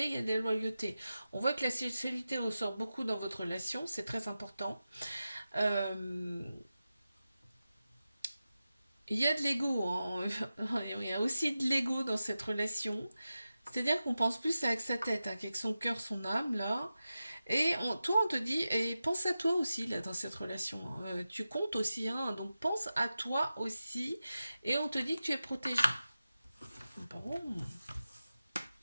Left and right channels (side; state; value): both; inverted; correlation -0.93